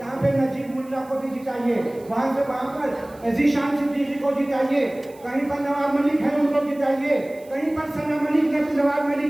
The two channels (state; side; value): noise; right; hiss, 26 dB below the sound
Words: पे नजीब मुल्ला को भी जिताइए, वहाँ से वहाँ पर जीशान सिद्दीकी को जिताइए, कहीं पर नवाब मलिक है उनको जिताइए, कहीं पर सना मलिक ने नवाब